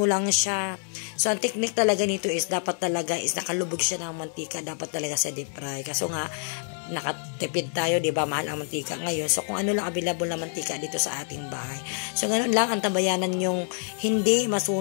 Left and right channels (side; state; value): right; silent; 56 dB below the other